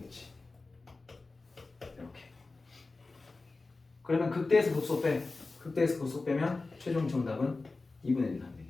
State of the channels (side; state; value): right; quieter; 3.6 dB